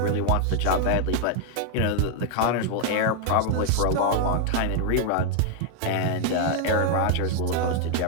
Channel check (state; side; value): different; both; correlation 0.00